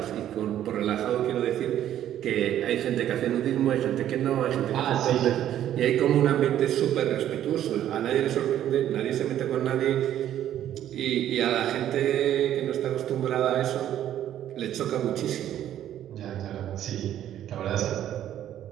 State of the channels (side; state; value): left; quieter; 11.4 dB